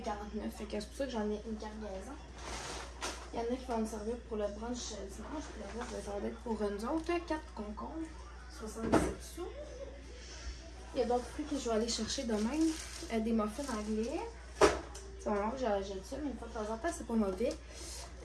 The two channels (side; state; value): both; identical; correlation 1.00